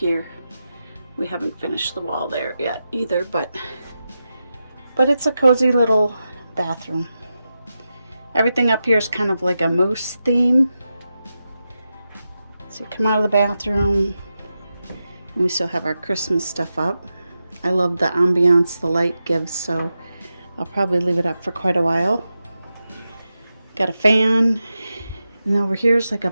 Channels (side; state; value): both; inverted; correlation -0.90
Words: We haven't finished the wall there yet either, but it's a cozy little bathroom. Everything up here is kind of like a moose theme. So you come out of the bathroom, and we still have our Christmas stuff up. I love the ambiance the light gives, so I'll probably leave it up for quite a while. Got a fan And over here is like a